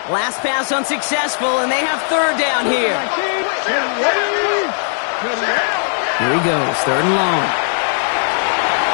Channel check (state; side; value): silent; right; digital silence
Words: Last pass unsuccessful, and they have 3rd down here. Here he goes, 3rd and long.